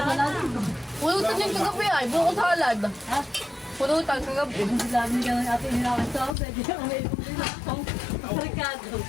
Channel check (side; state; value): right; drops out; at 6.3 s